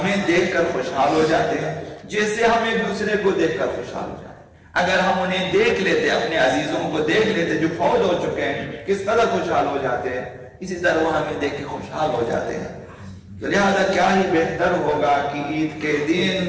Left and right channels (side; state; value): both; identical; correlation 1.00